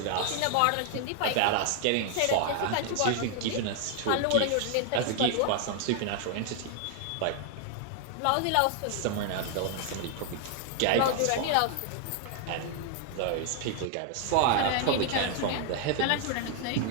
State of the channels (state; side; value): different; both; correlation 0.00